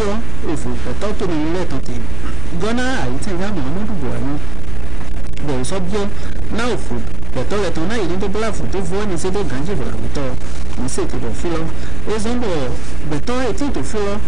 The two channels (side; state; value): left; noise; hum, 2 dB below the sound